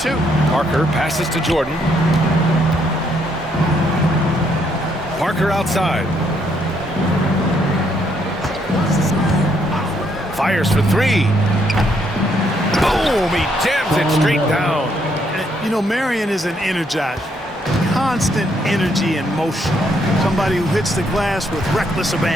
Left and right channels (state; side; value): normal; both; correlation 0.72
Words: Parker passes to Jordan. Parker outside. Fires for 3. Boom! He jams it straight down. You know, Marion is an energizer. Constant energy and motion. Somebody who hits the glass with reckless